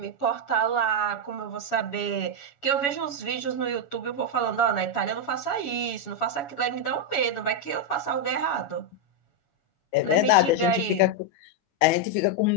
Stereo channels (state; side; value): late; right; 7.1 ms